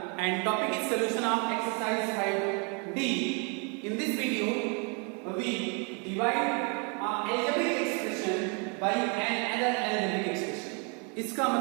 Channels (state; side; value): quieter; left; 35.2 dB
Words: and topic is solution of exercise 5D. In this video, we divide an algebraic expression by another algebraic expression. इसका